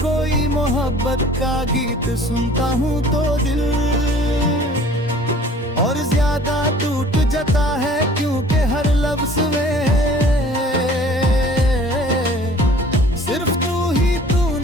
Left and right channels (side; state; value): both; normal; correlation 0.50